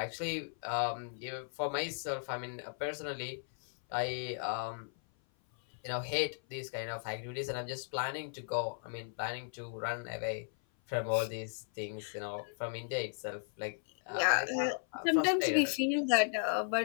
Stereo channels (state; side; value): silent; right; 54 dB below the other